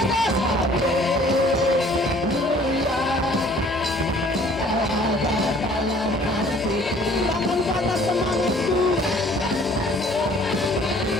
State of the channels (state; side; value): normal; both; correlation 0.54